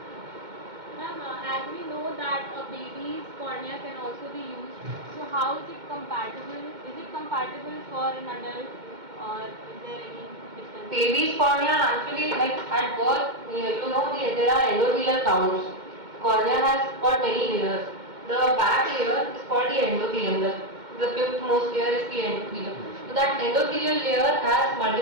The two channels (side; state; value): left; late; 2.1 ms